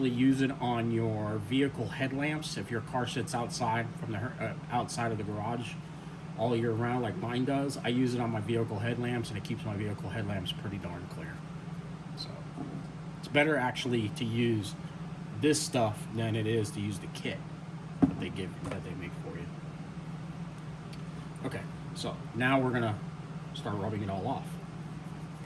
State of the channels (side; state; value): both; identical; correlation 1.00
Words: use it on your vehicle headlamps if your car sits outside from the outside of the garage all year round like mine does. I use it on my vehicle headlamps, and it keeps my vehicle headlamps pretty darn clear. So it's better actually to use this stuff than it is to use the kit that they make for you. Okay, so now we're gonna start rubbing it all off.